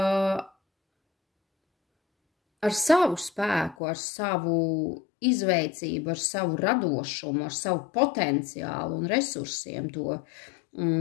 ar savu spēku, ar savu izveicību, ar savu radošumu, ar savu potenciālu un resursiem to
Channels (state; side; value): drops out; right; at 3.8 s